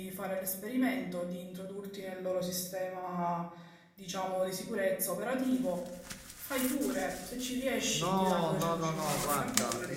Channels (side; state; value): both; identical; correlation 1.00